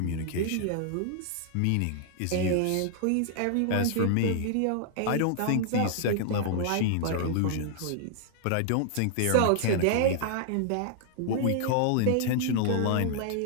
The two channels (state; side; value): different; both; correlation -0.01